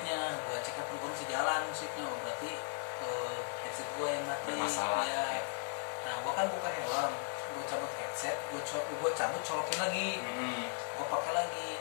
gue cek handphone gue masih jalan musiknya, berarti headset gue yang mati. Masalah ya. Nah gue kan buka helm, gue cabut headset, gue cabut colokin lagi, gue pakai lagi,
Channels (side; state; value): right; silent; 53 dB below the other